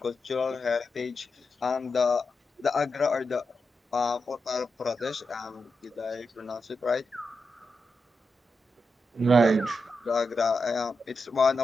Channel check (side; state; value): both; normal; correlation 0.87